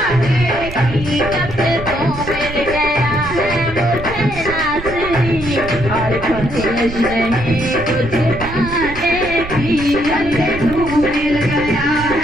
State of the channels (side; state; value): right; noise; rumble, 11 dB below the sound